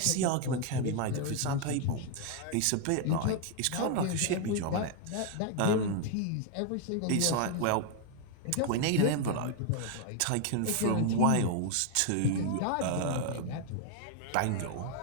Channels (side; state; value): both; different; correlation 0.00